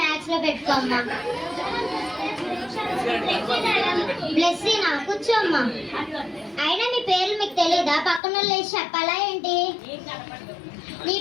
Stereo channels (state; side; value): drops out; right; at 8.2 s